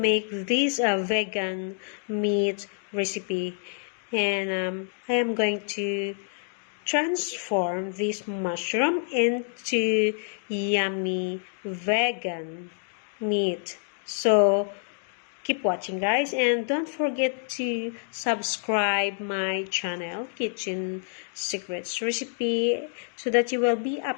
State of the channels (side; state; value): right; silent; 60 dB below the other